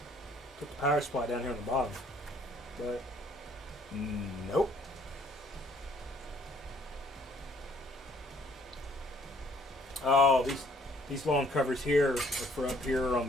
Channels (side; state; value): both; normal; correlation 0.61